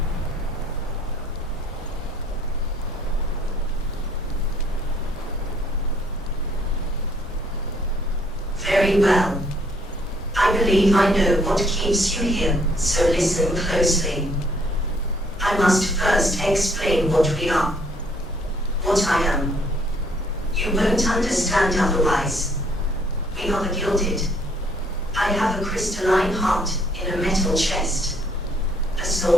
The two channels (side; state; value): both; normal; correlation 0.64